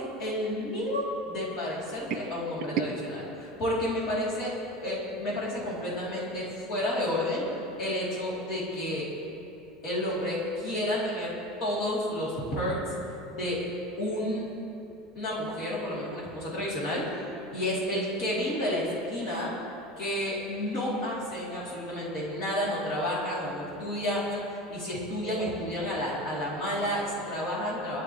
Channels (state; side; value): normal; both; correlation 0.31